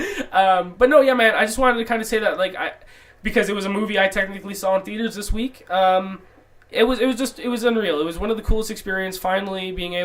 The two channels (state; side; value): identical; both; correlation 1.00